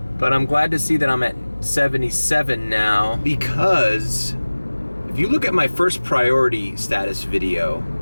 but I'm glad to see that I'm at $1.77 now, because if you look at my first priority status video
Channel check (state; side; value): inverted; both; correlation -1.00